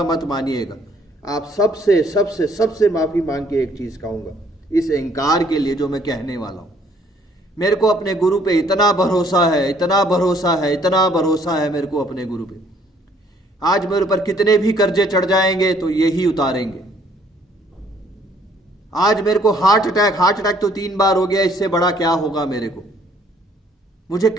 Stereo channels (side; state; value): both; normal; correlation 0.63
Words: मत मानिएगा। आप सबसे माफी मांग के एक चीज कहूंगा इस इंकार के लिए जो मैं कहने वाला हूं। मेरे को अपने गुरु पे इतना भरोसा है मेरे को अपने गुरु पे। आज मेरे ऊपर कितने भी कर्जे चढ़ जाएंगे तो यही उतारेंगे। आज मेरे को हार्ट अटैक तो 3 बार हो गया, इससे बड़ा क्या होगा मेरे को। मुझे